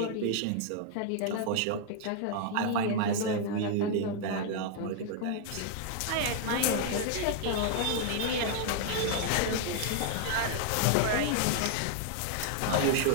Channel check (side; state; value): both; different; correlation 0.00